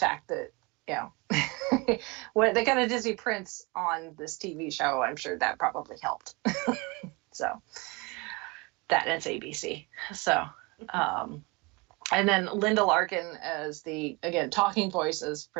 that when they got a Disney Prince on this TV show, I'm sure that probably helped. So that, and it's ABC. So and then Linda Larkin as the, again, talking voice as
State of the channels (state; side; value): quieter; left; 26.6 dB